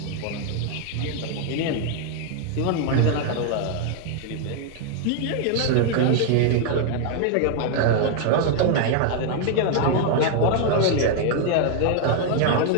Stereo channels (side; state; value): both; different; correlation 0.00